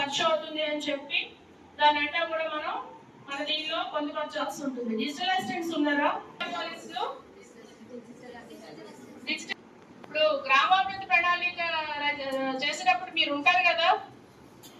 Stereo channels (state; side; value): identical; both; correlation 1.00